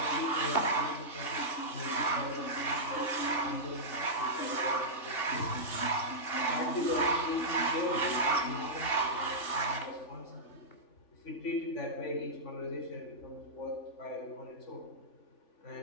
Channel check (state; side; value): late; right; 3.4 ms